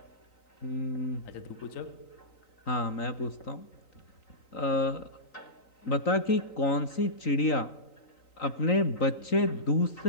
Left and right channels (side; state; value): right; late; 3.9 ms